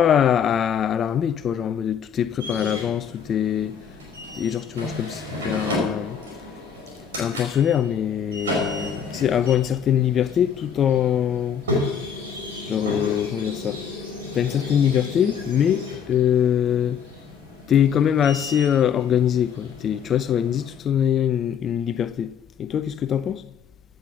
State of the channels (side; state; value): right; quieter; 8.2 dB